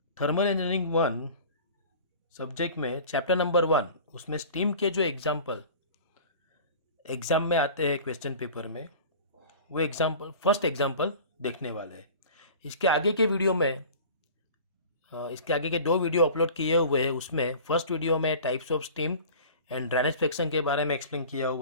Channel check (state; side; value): inverted; both; correlation -0.40